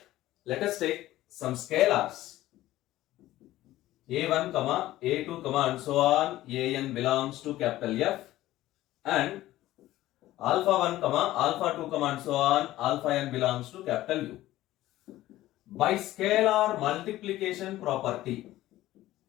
some scalars a1, a2, and so on. An belongs to capital F, and alpha 1, alpha 2, and so on, alpha n belongs to capital U. By scalar multiplication property,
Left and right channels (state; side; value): quieter; right; 15.5 dB